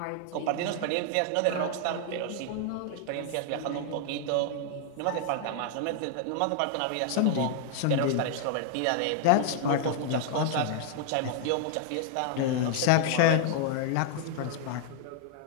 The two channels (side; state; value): both; different; correlation -0.01